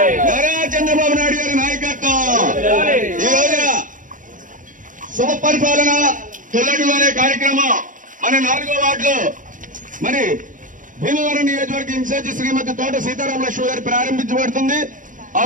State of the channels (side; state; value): left; late; 0.38 ms